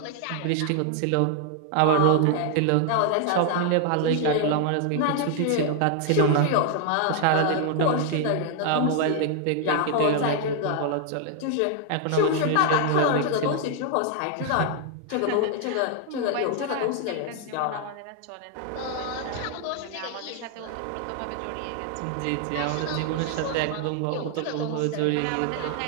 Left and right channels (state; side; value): different; both; correlation 0.00